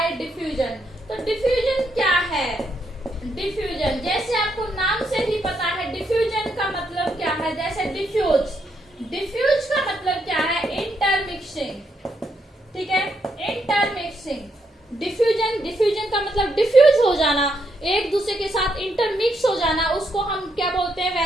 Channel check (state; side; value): normal; both; correlation 0.78